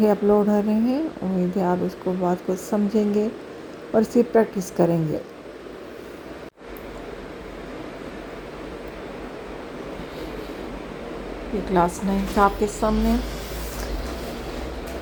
اپلوڈ ہو رہے ہیں۔ امید ہے آپ اس کو بات کو سمجھیں گے اور اس کی پریکٹس کریں گے۔ یہ کلاس 9 کا آپ کے سامنے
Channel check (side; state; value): both; identical; correlation 1.00